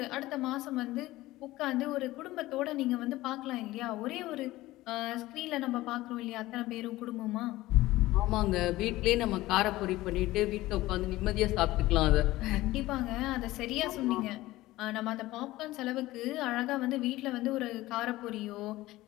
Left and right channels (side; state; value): right; quieter; 17.5 dB